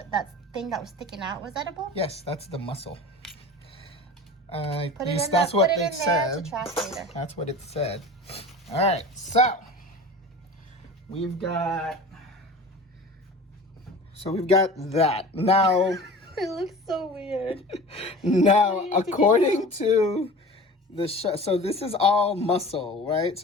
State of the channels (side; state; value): both; normal; correlation 0.37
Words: thing that was sticking out was edible? Yes, that's the muscle. Put it in that's what put it it in said. there to track later. That's what it said. All right, so we've got that. Now It looks so weird. now according to the so this is all muscle, right?